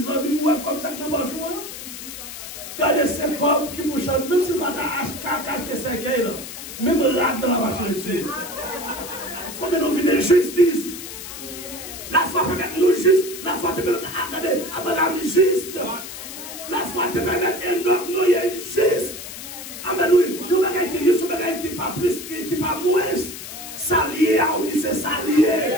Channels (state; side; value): noise; left; hiss, 11 dB below the sound